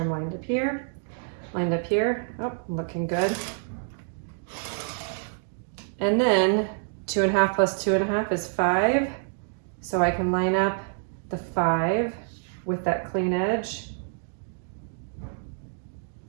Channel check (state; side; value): silent; left; digital silence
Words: I'm lined up here. Lined up here. Oh, looking good. And then 2.5 plus 2.5 is 5. So I can line up the 5 with that clean edge